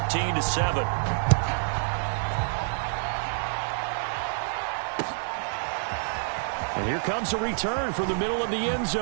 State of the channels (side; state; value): left; silent; 59 dB below the other